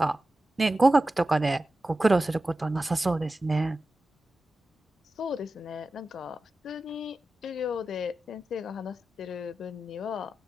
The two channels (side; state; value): both; normal; correlation 0.93